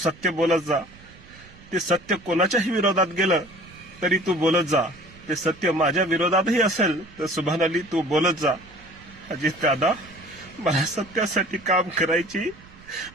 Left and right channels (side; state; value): right; noise; rumble, 23 dB below the sound